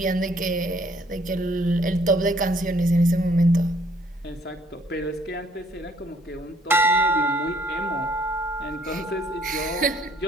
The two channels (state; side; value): normal; both; correlation 0.63